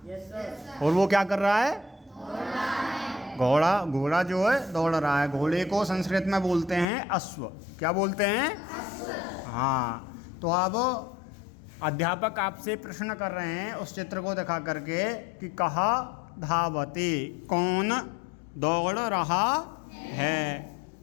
और वो क्या कर रहा है? घोड़ा जो है दौड़ रहा है। घोड़े को संस्कृत में बोलते हैं अश्व। क्या बोलते हैं? हाँ। तो अब अध्यापक आपसे प्रश्न कर रहे हैं उस चित्र को दिखा करके कि कह धावती, कौन दौड़ रहा है?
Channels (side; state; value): right; drops out; at 6.9 s